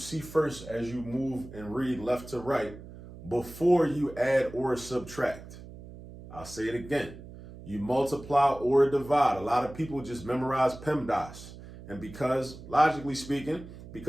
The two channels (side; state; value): right; noise; hum, 15 dB below the sound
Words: first as you move and read left to right before you add or subtract. I'll say it again. You multiply or divide. A lot of people just memorize PEMDAS. And because, logically speaking,